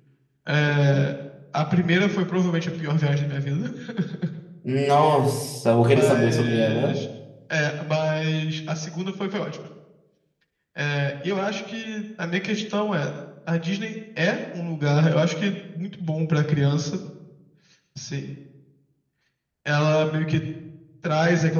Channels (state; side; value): identical; both; correlation 1.00